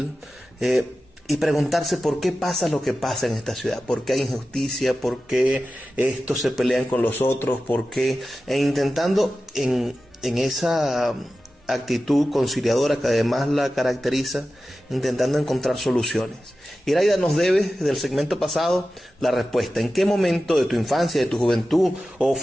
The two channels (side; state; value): both; normal; correlation 0.94